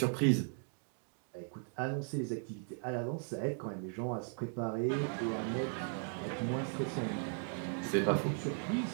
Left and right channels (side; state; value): left; silent; 53 dB below the other